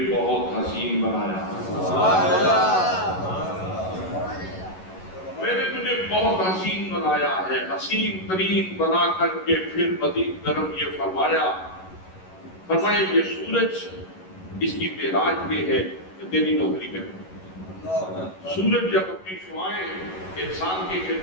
بہت حسین بنایا، میں نے تجھے بہت حسین بنایا ہے۔ حسین ترین بنا کر کے پھر مزید گرم یہ فرمایا یہ سورج، اس کی معراج یہ ہے کہ تیری نوکری کرے۔ سورج جب اپنی شعائیں انسان کی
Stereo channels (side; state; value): right; late; 11 ms